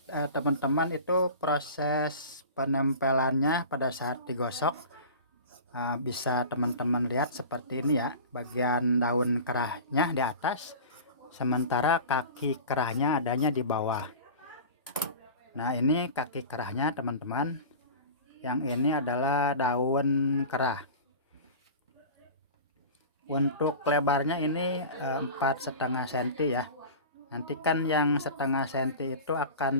teman-teman itu proses penempelannya pada saat digosok bisa teman-teman lihat seperti ini ya, bagian daun kerahnya di atas, sementara kaki kerahnya adanya di bawah. Nah ini kaki kerahnya teman-teman, yang ini adalah daun kerah. Untuk lebarnya ini 4,5 cm ya. Nanti kan yang 1/2 cm itu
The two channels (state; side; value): inverted; both; correlation -0.35